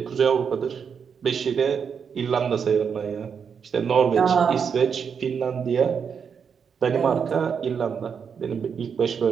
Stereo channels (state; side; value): quieter; left; 6.7 dB